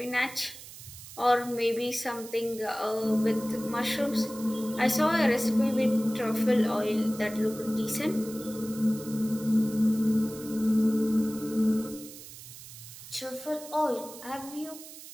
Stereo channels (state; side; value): noise; right; hiss, 15 dB below the sound